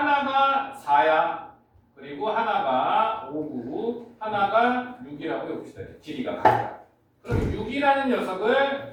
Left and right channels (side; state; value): both; identical; correlation 1.00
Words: 4야. 그리고 하나가 5고 하나가 6이라고 해봅시다. 길이가 같다. 그럼 6이라는